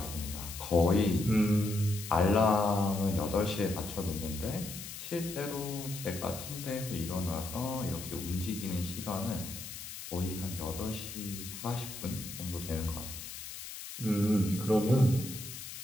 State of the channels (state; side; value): noise; left; hiss, 10 dB below the sound